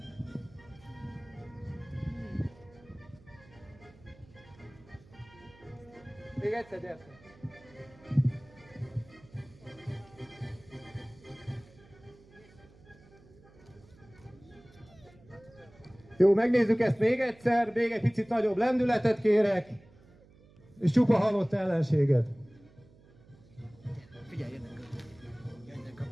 Még egyszer, gyertek! Jó, megnézzük ezt még egyszer, még egy picit nagyobb lendületet kérek, és csupa halott ellenséget. Figyelj, jönnek a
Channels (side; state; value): right; noise; hum, 25 dB below the sound